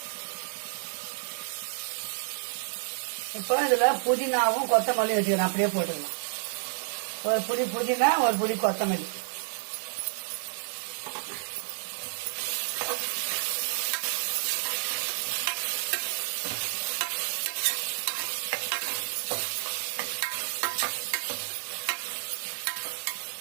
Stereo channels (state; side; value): silent; left; 58 dB below the other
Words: இப்போ இதில் புதினாவும் கொத்தமல்லி வச்சுக்கிறேன். அப்படியே போட்டுக்கலாம். ஒரு புடி புதினா, ஒரு புடி கொத்தமல்லி.